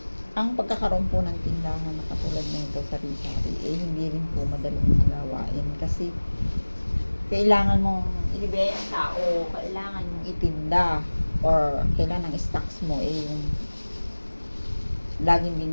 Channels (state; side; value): inverted; both; correlation -1.00